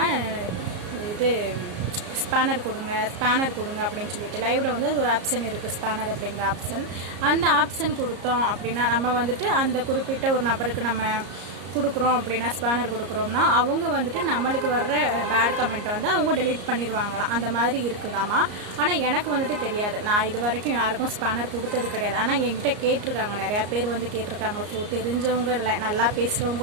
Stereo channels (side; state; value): left; late; 34 ms